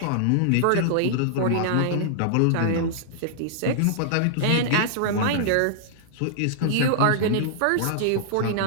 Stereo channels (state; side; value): different; both; correlation -0.01